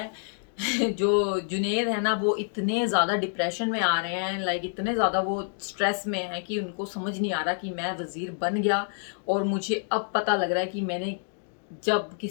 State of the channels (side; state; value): right; silent; 60 dB below the other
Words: जो जुनेद है ना वो इतने ज़्यादा डिप्रेशन में आ रहे हैं, लाइक इतने ज़्यादा वो स्ट्रेस में है कि उनको समझ नहीं आ रहा कि मैं वज़ीर बन गया और मुझे अब पता लग रहा है कि मैंने जब